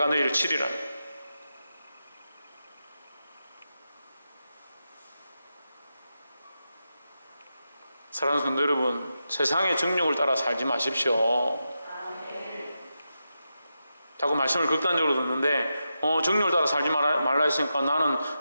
너희를 치리라. 사랑하는 성도 여러분, 세상의 정욕을 따라 살지 마십시오. 자꾸 말씀을 극단적으로 듣는데 정욕을 따라 살지 말라 했으니까 나는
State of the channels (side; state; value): both; inverted; correlation -0.88